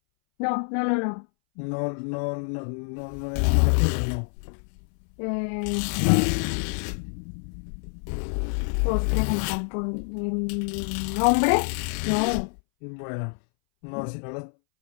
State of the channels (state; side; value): silent; right; 61 dB below the other